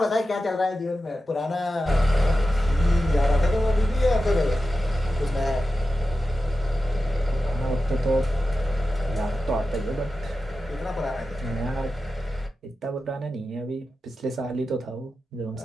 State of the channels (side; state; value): both; normal; correlation 0.92